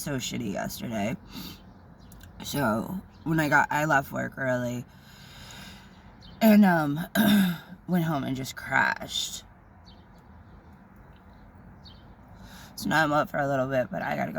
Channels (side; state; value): both; identical; correlation 1.00